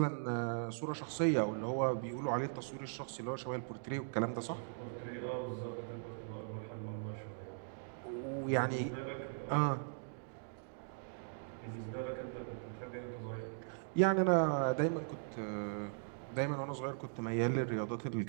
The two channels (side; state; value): left; silent; digital silence